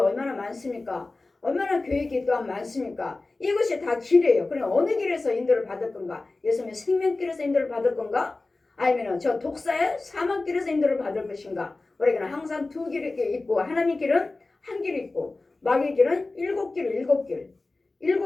많습니까? 얼마나 계획이 또한 많습니까? 이것이 다 길이에요. 그럼 어느 길에서 인도를 받을 건가? 예수님의 생명길에서 인도를 받을 건가? 아니면 저 독사의 사망길에서 인도를 받을 것인가? 우리에게는 항상 두 길이 있고 하나님의 길은 한 길이 있고 마귀의 길은 일곱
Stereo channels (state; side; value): quieter; right; 3.3 dB